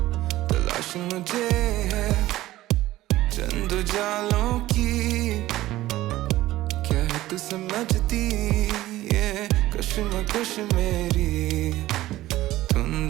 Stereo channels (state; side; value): quieter; left; 16.0 dB